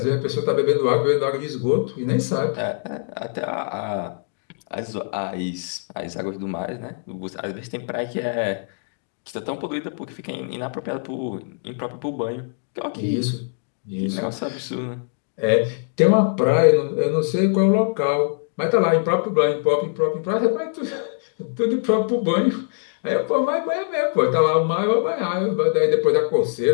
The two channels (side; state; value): right; silent; 64 dB below the other